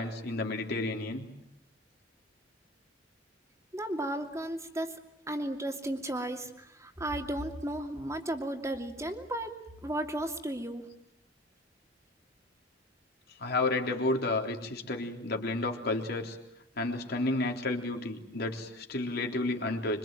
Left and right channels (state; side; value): normal; both; correlation 0.41